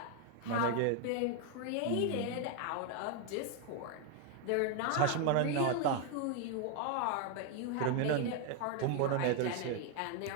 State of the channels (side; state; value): both; different; correlation 0.01